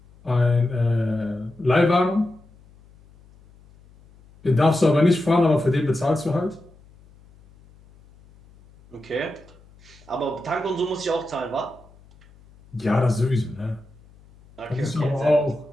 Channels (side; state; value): left; noise; hum, 27 dB below the sound